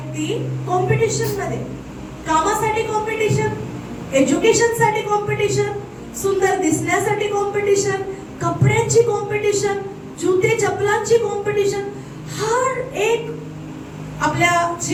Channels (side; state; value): both; identical; correlation 1.00